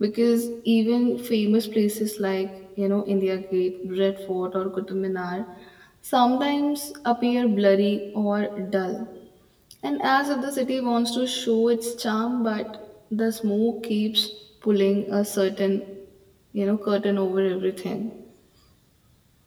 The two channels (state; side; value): identical; both; correlation 1.00